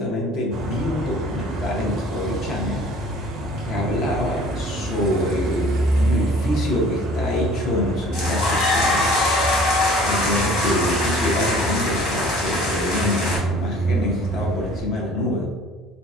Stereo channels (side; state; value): both; normal; correlation 0.50